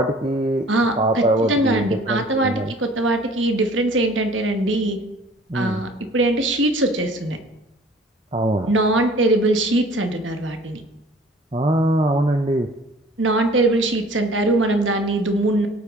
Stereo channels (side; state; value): both; normal; correlation 0.50